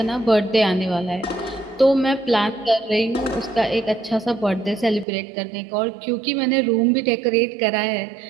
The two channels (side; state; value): left; drops out; at 5.1 s